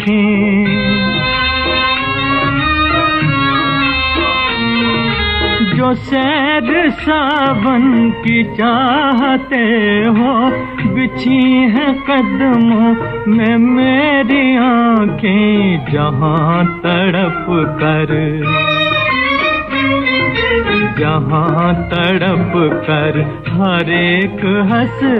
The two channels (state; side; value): identical; both; correlation 1.00